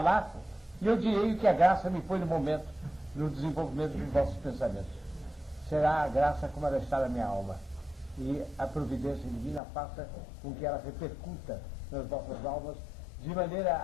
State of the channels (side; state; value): right; drops out; at 9.6 s